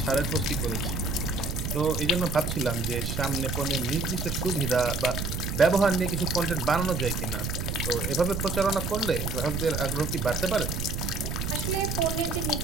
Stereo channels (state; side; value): noise; right; rumble, 3 dB below the sound